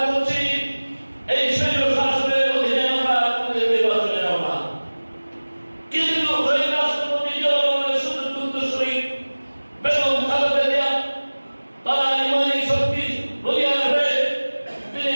করছি এই শৈল শাসনের অধীনে আমরা নির্বাচনে যাব না। কিন্তু ওই রাষ্ট্রপতি জিয়াউর রহমানের সুযোগ উত্তরসূরি বেগম খালেদা জিয়া তারা ইমানি শক্তি বলিয়ান হয়ে তিনি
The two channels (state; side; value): inverted; both; correlation -1.00